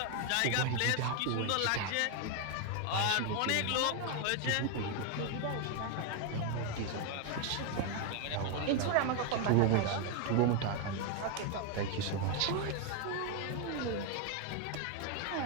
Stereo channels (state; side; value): different; both; correlation 0.01